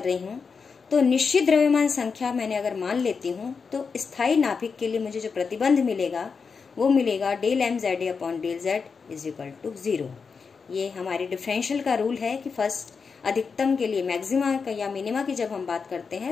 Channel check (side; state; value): right; quieter; 5.4 dB